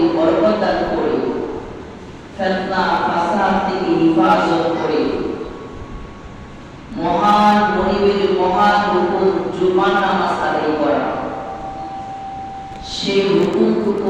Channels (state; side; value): identical; both; correlation 1.00